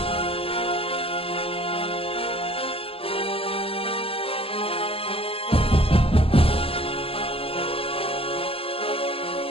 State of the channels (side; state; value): right; late; 0.27 ms